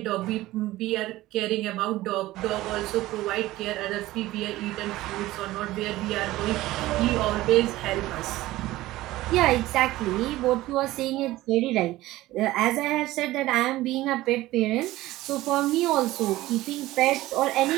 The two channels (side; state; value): left; quieter; 17.0 dB